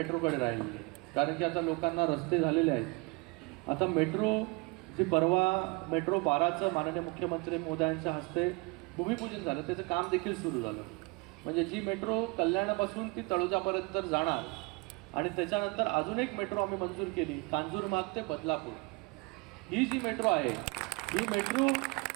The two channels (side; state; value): left; quieter; 27.7 dB